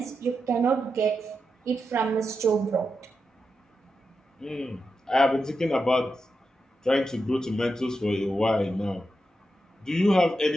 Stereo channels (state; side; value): normal; both; correlation 0.88